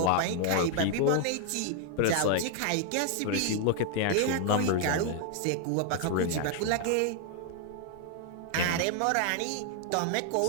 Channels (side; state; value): both; different; correlation 0.00